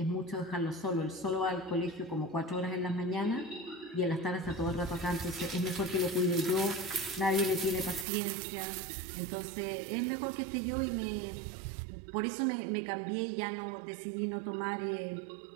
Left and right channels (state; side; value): drops out; left; at 8.1 s